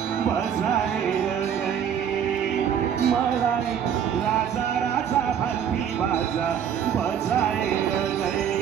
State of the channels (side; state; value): left; quieter; 8.6 dB